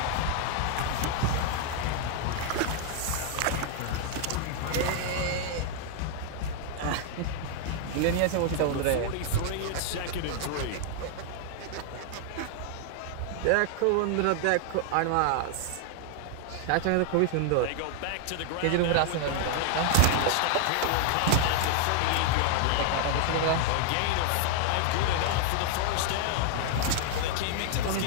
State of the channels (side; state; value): both; different; correlation 0.00